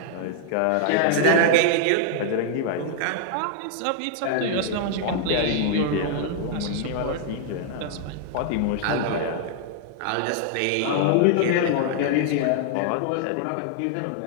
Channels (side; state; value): both; different; correlation -0.01